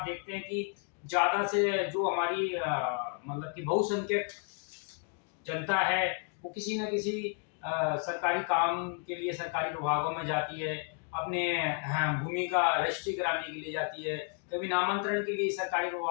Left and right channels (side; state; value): right; quieter; 38.4 dB